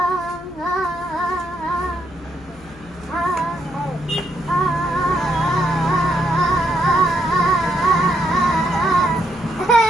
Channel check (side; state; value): left; noise; hum, 22 dB below the sound